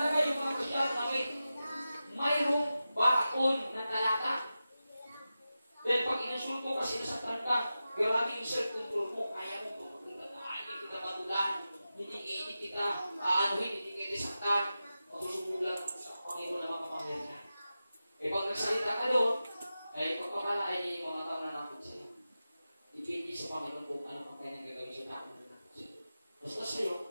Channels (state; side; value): inverted; both; correlation -0.93